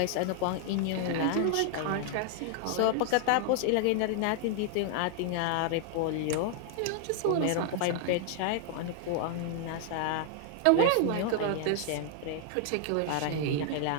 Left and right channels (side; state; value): both; different; correlation 0.00